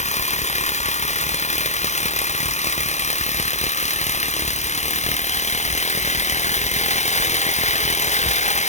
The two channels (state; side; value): late; right; 0.33 ms